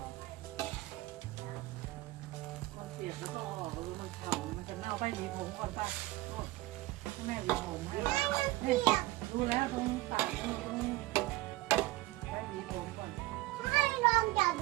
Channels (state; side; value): quieter; left; 18.9 dB